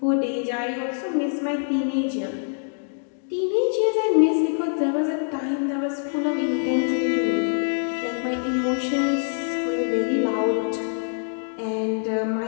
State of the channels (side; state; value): right; silent; digital silence